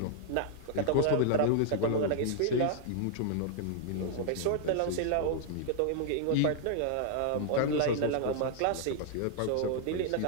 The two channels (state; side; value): different; both; correlation 0.00